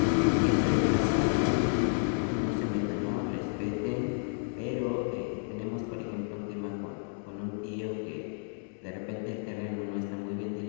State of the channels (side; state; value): right; silent; 57 dB below the other